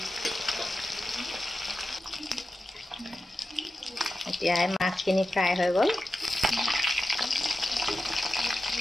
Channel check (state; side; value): normal; both; correlation 0.92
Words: এতিয়া মাছখিনি ফ্ৰাই হৈ গ'ল